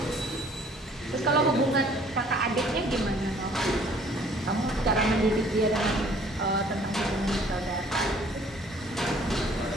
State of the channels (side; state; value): both; normal; correlation 0.56